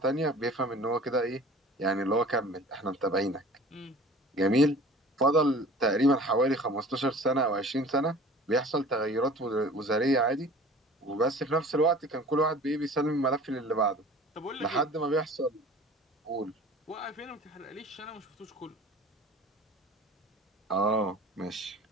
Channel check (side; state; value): both; normal; correlation 0.44